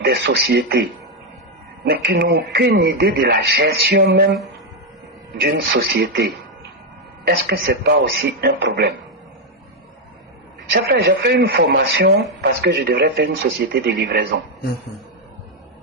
sociétés, mais qui n'ont aucune idée de la gestion même d'une société, est-ce que ce n'est pas aussi un problème? J'ai fait une formation parce que je devrais faire une société de livraison.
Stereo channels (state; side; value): normal; both; correlation 0.03